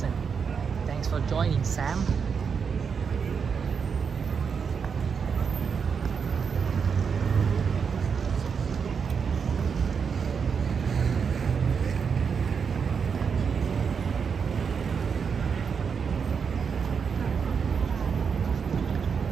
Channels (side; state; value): left; quieter; 6.2 dB